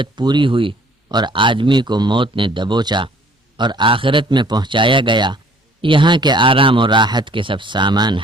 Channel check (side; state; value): both; normal; correlation 0.56